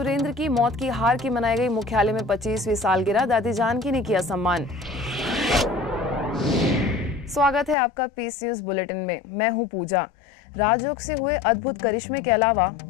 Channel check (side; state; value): right; drops out; at 7.8 s